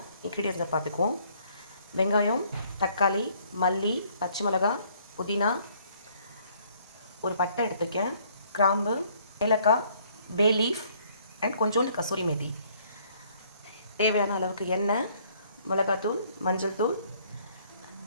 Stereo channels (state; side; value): inverted; both; correlation -0.63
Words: இன்க்ரீடியன்ஸை பார்த்துக்குவோம். வெங்காயம், தக்காளி, மல்லி, பச்சை மிளகாய், புதினா, ஒரு பட்டை எடுத்துக்கேன், கிராம்பு, ஏலக்காய், பே லீஃப் அண்ட் கொஞ்சோண்டு கசூரி மேதி. தேவையான அளவுக்கு எண்ணெய், மிளகாத்தூள், மஞ்சள் தூள்,